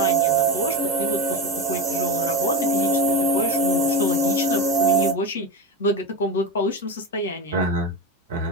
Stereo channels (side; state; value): both; normal; correlation 0.19